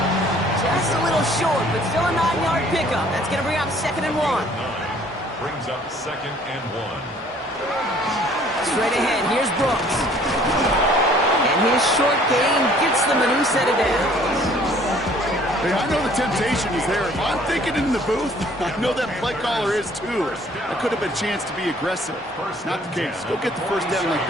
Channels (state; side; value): normal; both; correlation 0.57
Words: Just a little short, but still a 9-yard pickup. That's going to bring up 2nd and 1. Brings up 2nd and 1. Straight ahead, here's Brooks. And his short gain gets them a new set of downs. Hey, I know the temptation is there. If I'm thinking in the booth, I know that play caller is too. That could have been a chance to be aggressive. Not the case. Go get the first down like